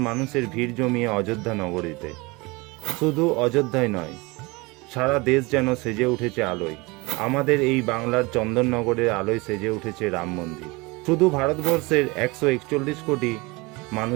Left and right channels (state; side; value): quieter; left; 25.0 dB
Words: মানুষের ভিড় জমিয়ে অযোধ্যা নগরীতে। শুধু অযোধ্যায় নয়, সারা দেশ যেন সেজে উঠেছে আলোয়। আমাদের এই বাংলার চন্দননগরের আলোয় সেজে উঠেছে রাম মন্দির। শুধু ভারতবর্ষের 141 কোটি